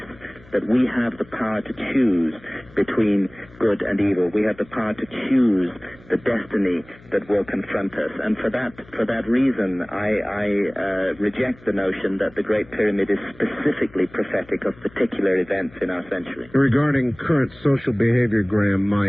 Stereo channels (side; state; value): left; noise; hum, 24 dB below the sound